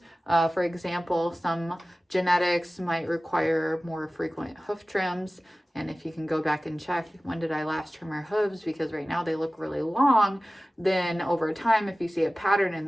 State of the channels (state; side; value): normal; both; correlation 0.97